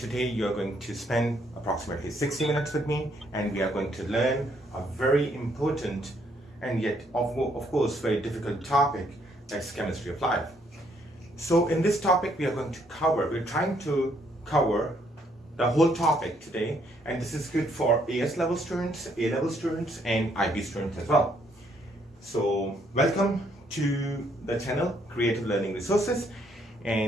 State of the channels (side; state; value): both; normal; correlation 0.70